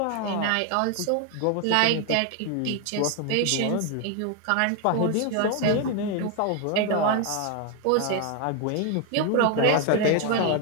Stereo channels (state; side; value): different; both; correlation 0.01